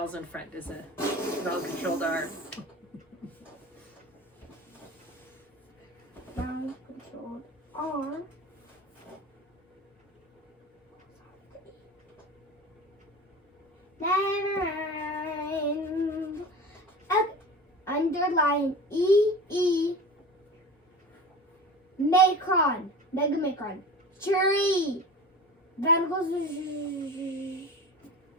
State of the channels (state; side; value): normal; both; correlation 0.34